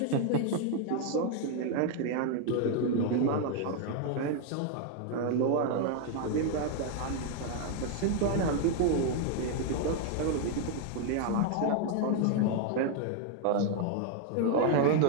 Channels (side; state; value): both; different; correlation 0.01